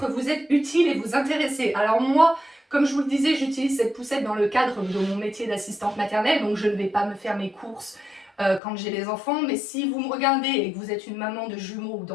vous être utile et vous intéresser. Alors moi, comme je vous le disais, j'utilise cette poussette dans le cadre de mon métier d'assistante maternelle, donc je ne vais pas me faire mes courses quand j'ai les enfants, mais si vous me regardez et que vous êtes une maman de jumeaux ou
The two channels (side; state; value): right; drops out; at 8.6 s